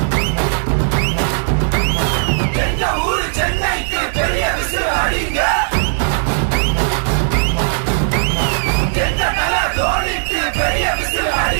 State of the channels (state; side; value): silent; left; digital silence